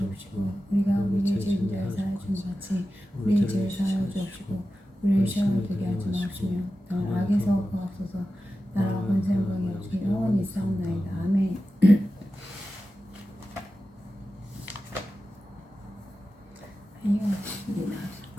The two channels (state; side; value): normal; both; correlation 0.93